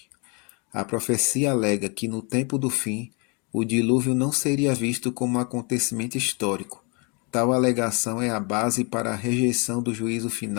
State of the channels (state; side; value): quieter; right; 33.0 dB